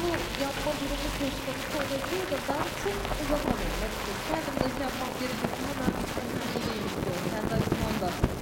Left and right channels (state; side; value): identical; both; correlation 1.00